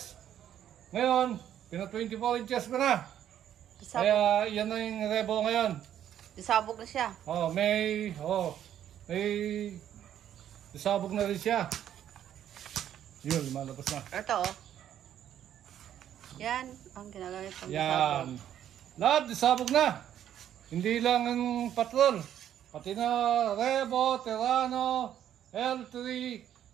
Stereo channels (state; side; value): quieter; left; 10.5 dB